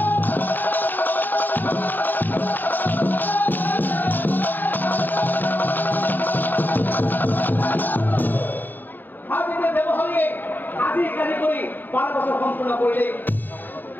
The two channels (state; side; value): late; right; 0.090 ms